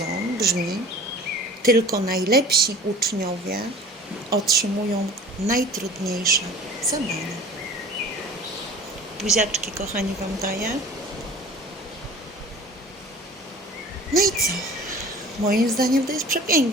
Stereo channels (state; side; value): normal; both; correlation 0.42